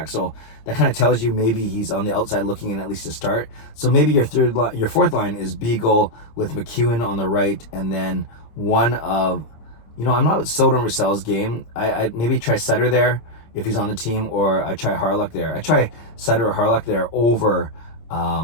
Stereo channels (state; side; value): late; right; 26 ms